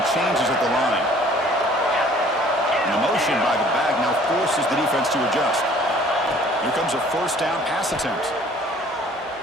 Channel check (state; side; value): normal; both; correlation 0.54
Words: changes at the line. An motion by the back now forces the defense to adjust. Here comes a first down pass attempt.